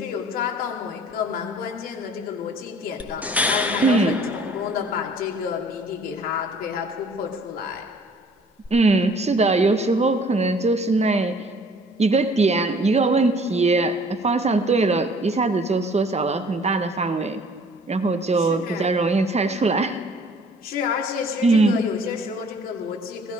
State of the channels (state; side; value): normal; both; correlation 0.54